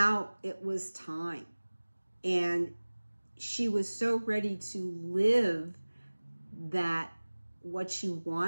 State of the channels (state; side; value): inverted; both; correlation -1.00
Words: it was time. And she was so ready to live that what she